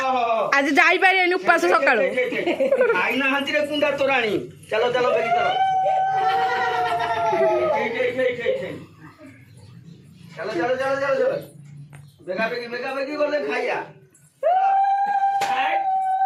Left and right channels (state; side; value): identical; both; correlation 1.00